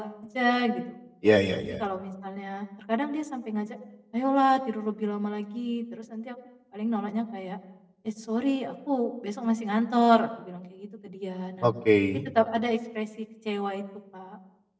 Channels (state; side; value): identical; both; correlation 1.00